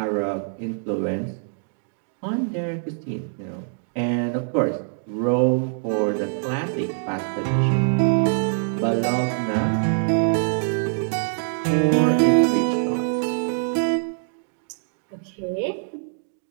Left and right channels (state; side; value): silent; left; digital silence